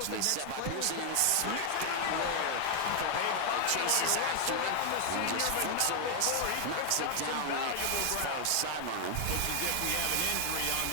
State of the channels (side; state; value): both; different; correlation 0.00